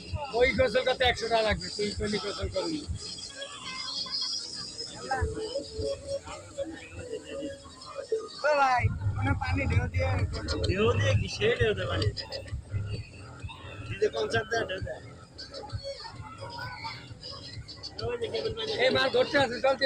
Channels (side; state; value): both; identical; correlation 1.00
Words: ওই গোসল করতে 100 টাকা লাগবে, তুই কোনি গোসল করবি। ভাই মানে পানি ঢেউ দিয়ে কি সে ঢেউ দেয় পানি দিতে কনসার্ট দেয় ঢেউ দেয়। এই মাছ ধরতে আছে, চলতে